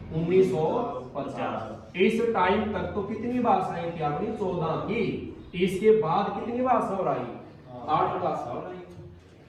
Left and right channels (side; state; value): both; identical; correlation 1.00